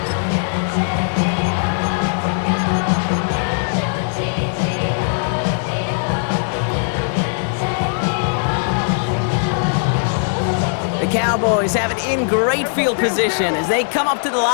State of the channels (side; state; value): right; silent; digital silence